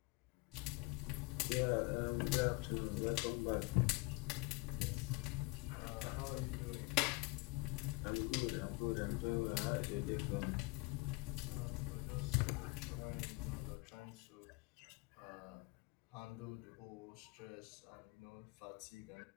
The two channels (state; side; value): quieter; right; 25.6 dB